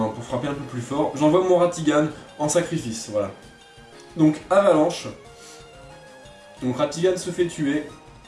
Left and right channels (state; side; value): identical; both; correlation 1.00